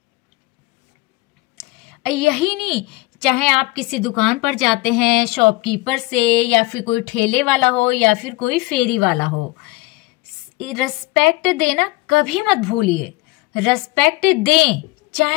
यही नहीं, चाहे आप किसी दुकान पर जाते हैं, शॉपकीपर से, या फिर कोई ठेले वाला हो, या फिर कोई फेरी वाला हो, रिस्पेक्ट देना कभी मत भूलिए। रिस्पेक्ट दें,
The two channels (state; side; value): quieter; right; 21.3 dB